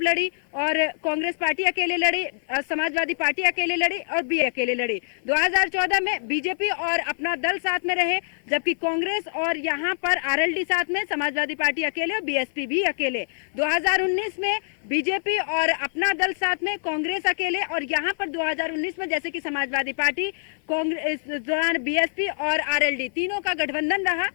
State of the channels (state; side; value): silent; right; 55 dB below the other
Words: लड़ी, और कांग्रेस पार्टी अकेले लड़ी, समाजवादी पार्टी अकेले लड़ी, और बी अकेले लड़ी। 2014 में बीजेपी और अपना दल साथ में रहे, जबकि कांग्रेस और यहाँ पर आरएलडी साथ में, समाजवादी पार्टी अकेले और बीएसपी भी अकेले। 2019 में बीजेपी और अपना दल साथ में, कांग्रेस अकेले, और यहाँ पर 2019 में जैसे कि समाजवादी पार्टी, कांग्रेस दौरान बीएसपी और आरएलडी तीनों का गठबंधन रहा।